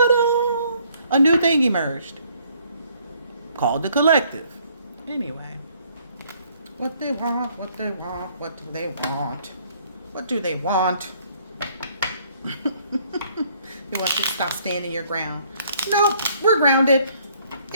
new thing emerged called the collective. Anyway. What they want, what do they want, what do they want? They want you to stop standing your ground. Nope, we're grounded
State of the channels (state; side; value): inverted; both; correlation -0.63